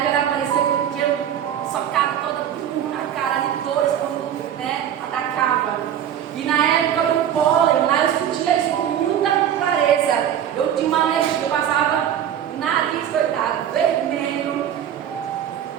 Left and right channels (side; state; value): left; quieter; 9.9 dB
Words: era parecia que eu tinha socado toda na cara de dores quando, né, atacava. E na época do pólen, lá eu sentia isso com muita clareza. Eu tinha uma alergia, eu passava o nariz, coitado, vermelho,